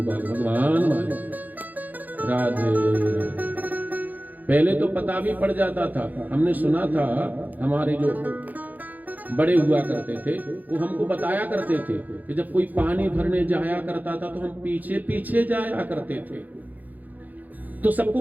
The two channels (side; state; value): left; late; 0.082 ms